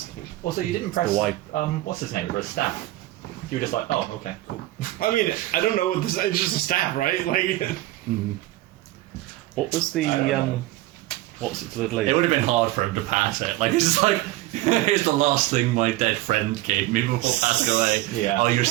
Also, you didn't press the white. what's his name for a staff. You were just like, oh, okay, cool. I mean, I don't know what this. It's just a staff, right? Like. What was the what was it for the lady? It would have been hard for him to pass it. Like it's just like, here's the last thing my dead friend gave me before passing away. Yeah. Oh, your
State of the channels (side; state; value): left; quieter; 17.2 dB